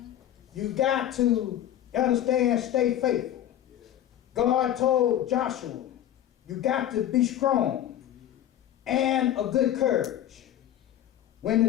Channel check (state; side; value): quieter; right; 11.6 dB